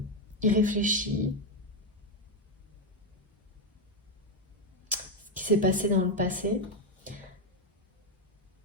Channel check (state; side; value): normal; both; correlation 0.05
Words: irréfléchi qui s'est passé dans le passé.